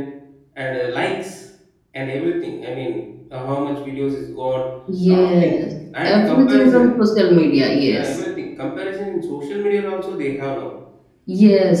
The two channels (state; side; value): identical; both; correlation 1.00